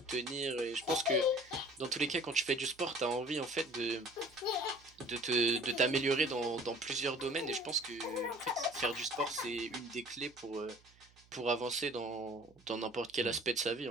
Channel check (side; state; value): right; noise; hum, 28 dB below the sound